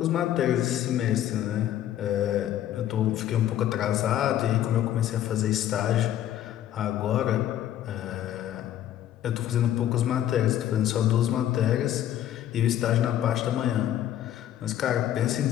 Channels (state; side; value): quieter; right; 11.8 dB